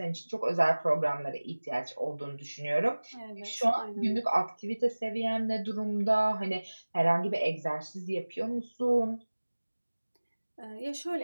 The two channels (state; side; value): inverted; both; correlation -1.00